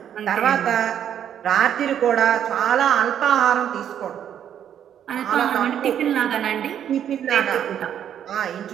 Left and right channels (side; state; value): left; quieter; 9.6 dB